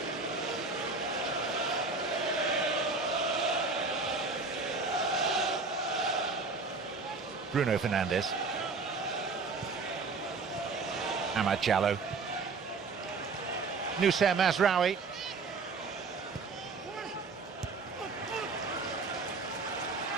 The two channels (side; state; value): left; quieter; 4.2 dB